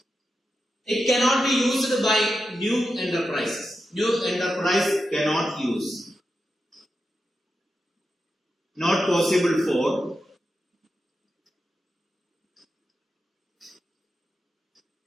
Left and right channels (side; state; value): both; normal; correlation 0.89